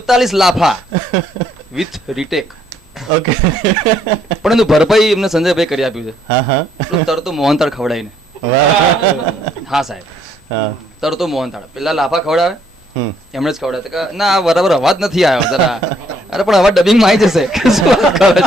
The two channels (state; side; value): normal; both; correlation 0.67